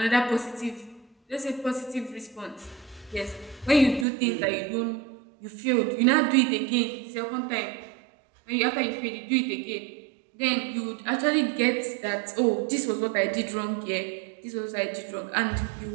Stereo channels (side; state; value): left; drops out; at 4.0 s